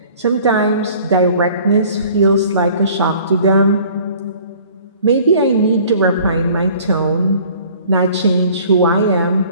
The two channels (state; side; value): inverted; both; correlation -0.51